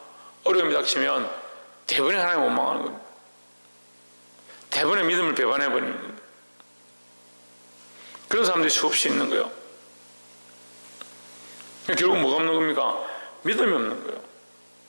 어려움이 닥치면 대부분의 하나님 원망하는 겁니다. 대부분의 믿음을 배반해버리는 겁니다. 그런 사람들이 수없이 있는 거예요. 결국 뭐가 없는 겁니까? 믿음이 없는 거예요.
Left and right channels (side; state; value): both; inverted; correlation -1.00